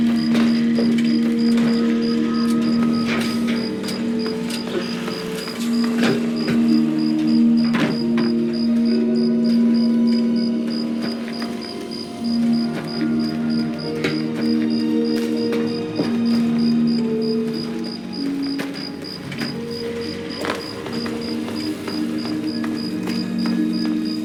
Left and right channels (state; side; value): identical; both; correlation 1.00